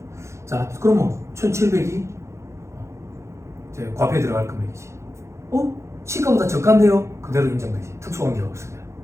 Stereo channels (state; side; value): late; left; 0.14 ms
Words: 자, 그러면 1,700이 이제 과표에 들어갈 금액이지. 시가보다 저가인데요? 그대로 인정되지. 특수관계가 없으면.